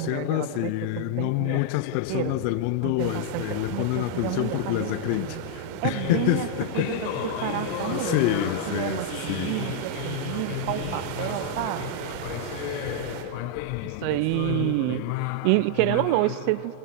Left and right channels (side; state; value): both; different; correlation -0.01